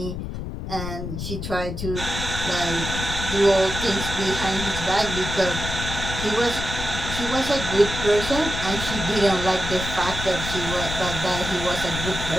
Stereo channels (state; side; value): noise; left; rumble, 6 dB below the sound